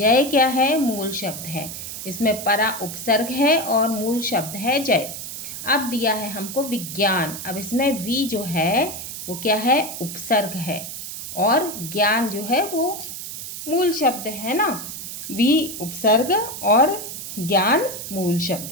क्या है, मूल शब्द है। इसमें परा उपसर्ग है और मूल शब्द है जय। अब दिया है हमको विज्ञान, अब इसमें वी जो है वो क्या है, उपसर्ग है और ज्ञान जो है वो मूल शब्द है ना। वी उपसर्ग और ज्ञान मूल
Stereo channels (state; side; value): noise; right; hiss, 8 dB below the sound